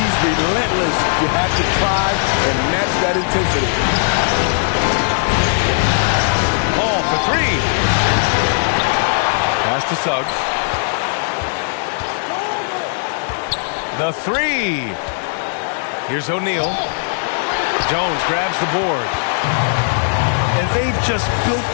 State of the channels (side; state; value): right; silent; digital silence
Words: he's relentless. You have to try and match that intensity. Ball for three. Pass to Suggs. The three. Here's O'Neal. Jones grabs the board. And they've just built